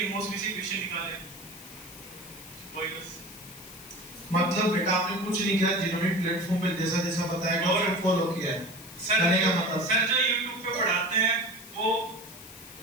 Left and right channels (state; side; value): noise; left; hiss, 16 dB below the sound